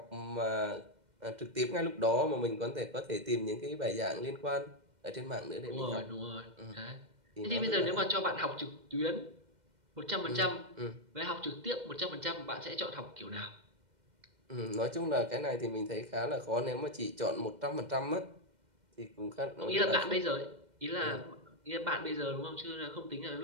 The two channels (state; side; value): late; left; 2.1 ms